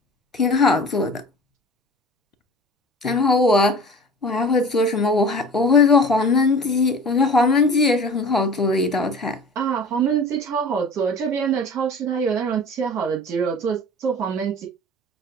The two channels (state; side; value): normal; both; correlation 0.41